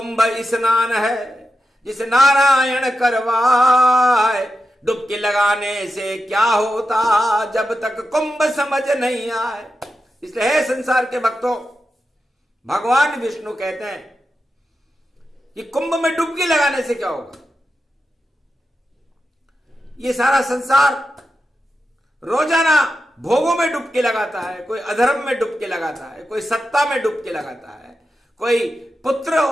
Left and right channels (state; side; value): normal; both; correlation 0.89